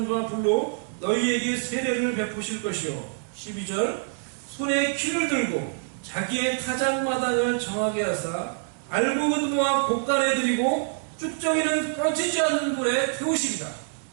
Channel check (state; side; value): silent; left; digital silence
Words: 불로 너희에게 세례를 베푸실 것이요. 12절 손에 키를 들고 자기의 타작마당을 정하게 하사 알곡은 모아 곳간에 들이고 쭉정이는 꺼지지 않는 불에 태우시리라.